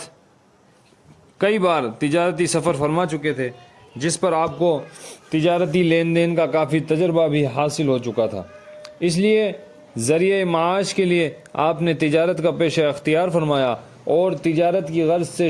کئی بار تجارتی سفر فرما چکے تھے، جس پر آپ کو تجارتی لین دین کا کافی تجربہ بھی حاصل ہو چکا تھا، اس لیے ذریعہ معاش کے لیے آپ نے تجارت کا پیشہ اختیار فرمایا اور تجارت کی غرض سے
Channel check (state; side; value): identical; both; correlation 1.00